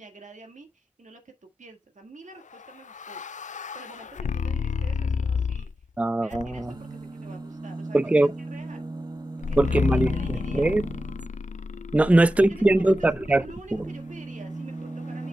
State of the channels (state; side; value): normal; both; correlation 0.91